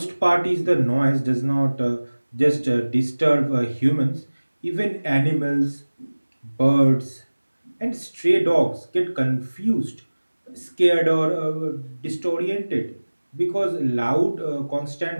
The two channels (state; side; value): inverted; both; correlation -1.00